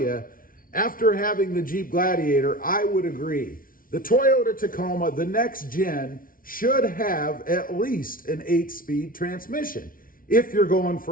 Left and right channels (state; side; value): late; right; 0.41 ms